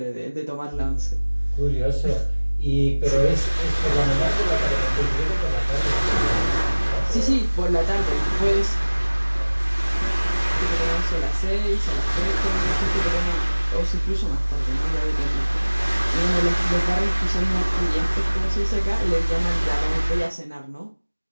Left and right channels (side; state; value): both; inverted; correlation -1.00